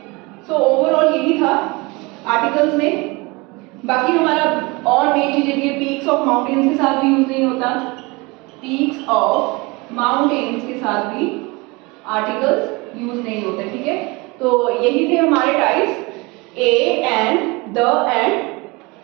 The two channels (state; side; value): quieter; left; 25.5 dB